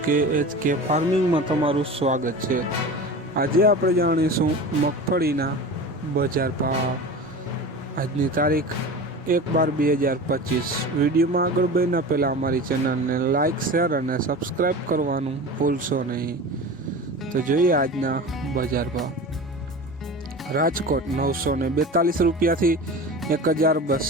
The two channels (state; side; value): normal; both; correlation 0.32